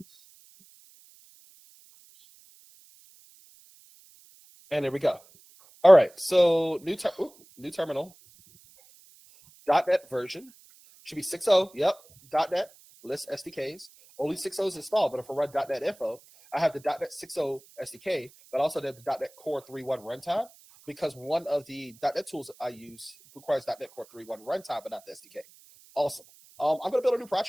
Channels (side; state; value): right; noise; hiss, 26 dB below the sound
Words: And there we go. All right, so new terminal. .NET version should be 6.0. Yep, .NET list SDKs. Only 6.0 is installed, but if I run .NET info, I have the .NET 6.0 SDK, but also the .NET Core 3.1 runtime, because one of the .NET tools I use requires .NET Core 3.1 runtime, but not the SDK. Awesome. I'm going to build a new